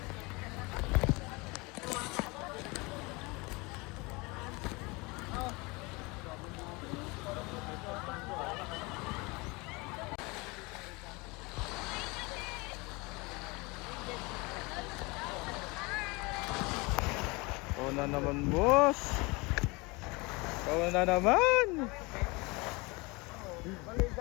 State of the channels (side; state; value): right; quieter; 25.9 dB